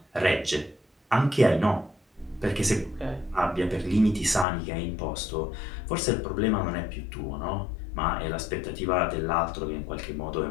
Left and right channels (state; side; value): drops out; right; at 4.5 s